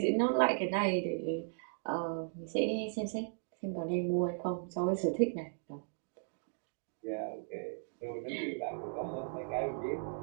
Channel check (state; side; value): silent; left; digital silence